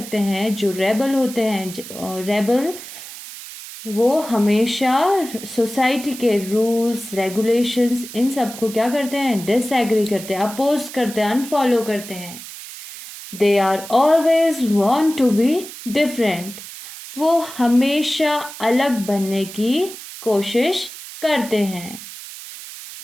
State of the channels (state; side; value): noise; right; hiss, 13 dB below the sound